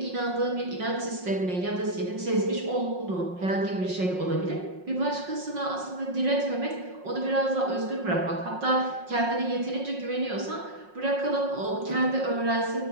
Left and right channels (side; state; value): left; late; 5.5 ms